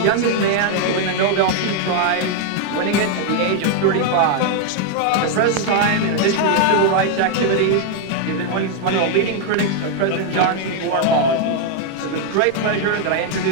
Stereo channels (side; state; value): both; different; correlation 0.00